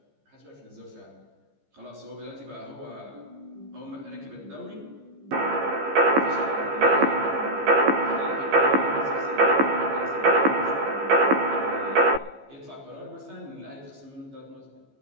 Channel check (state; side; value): late; left; 15 ms